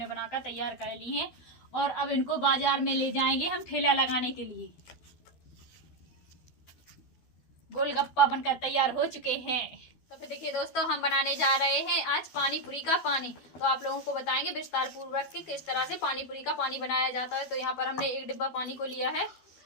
बनाकर तैयार कर ली हैं और अब इनको बाजार में ले जाएंगे हम ठेला लगाने के लिए। गोलगप्पा बनकर तैयार हो चुके हैं। तो फिर देखिए दोस्तों, हम बनाने जा रहे हैं आज पानी पूरी का पानी। तो आप लोगों को बताएंगे विस्तार पूर्वक कि किस तरह से पानी पूरी का पानी बनाया जाता है। तो यहाँ पर हमने एक डिब्बा पानी को लिया है,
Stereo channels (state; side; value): late; right; 12 ms